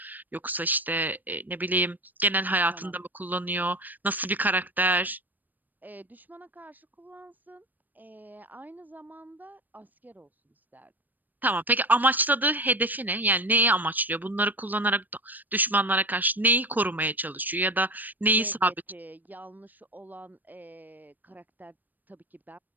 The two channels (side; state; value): left; late; 0.086 ms